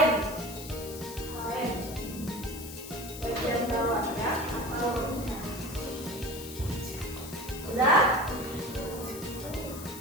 Bagian bawah ya. Sudah?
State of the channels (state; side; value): noise; left; hiss, 12 dB below the sound